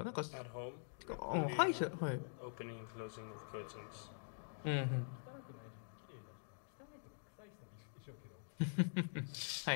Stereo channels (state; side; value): silent; right; digital silence